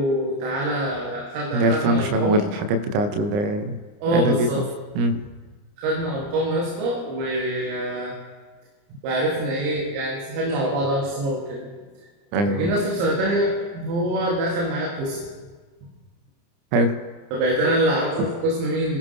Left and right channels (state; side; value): late; left; 29 ms